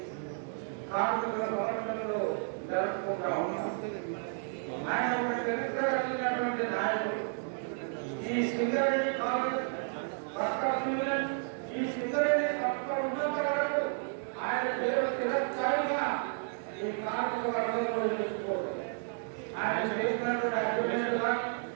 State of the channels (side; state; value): left; silent; 56 dB below the other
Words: కార్మికుల సమస్యలు జరుపుకుంటా ఉన్నాం. ఆయన ఒక చరిత్ర కలిగినటువంటి నాయకుడు. ఈ సింగరేణి కాలేజ్ ఈ సింగరేణి సంస్థ ఉన్నంత వరకు ఆయన పేరు చిరస్థాయిగా ఈ కార్మిక వర్గంలో నిలుచుకోవడం. ఆయన చేసినటువంటి అభివృద్ధి కానీ